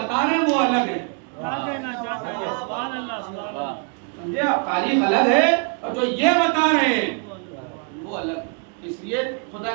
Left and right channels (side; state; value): left; quieter; 37.0 dB